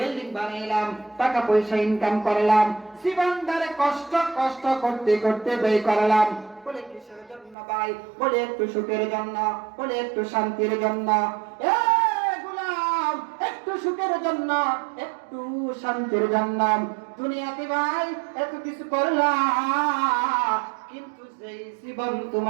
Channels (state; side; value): drops out; left; at 7.6 s